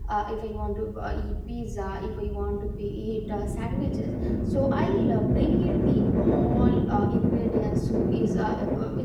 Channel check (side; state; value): both; identical; correlation 1.00